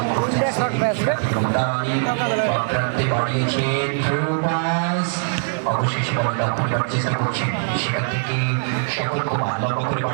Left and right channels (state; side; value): silent; left; 65 dB below the other